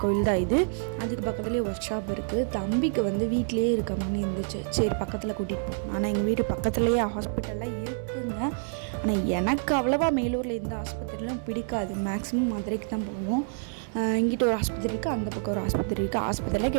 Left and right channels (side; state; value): left; silent; 60 dB below the other